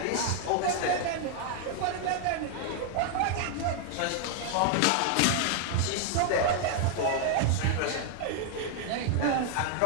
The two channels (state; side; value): different; both; correlation 0.00